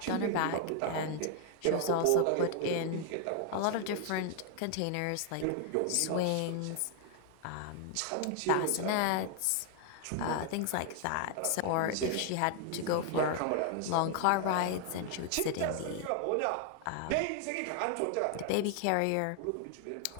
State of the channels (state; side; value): different; both; correlation 0.00